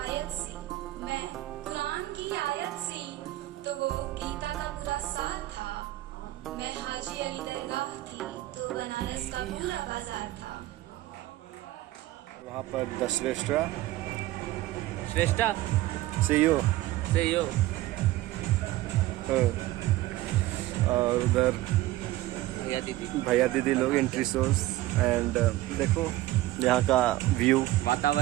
सी, मैं कुरान की आयत सी, तो वो गीता का पूरा साथ था। मैं हाजी अली दरगाह थी, तो बनारस का पूरा बाजार था। वहाँ पर द श्रेष्ठा CEO और उधर भैया दीदी लोग एंट्री सोर्स एंड देखो यहाँ का व्यू,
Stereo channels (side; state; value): left; quieter; 16.4 dB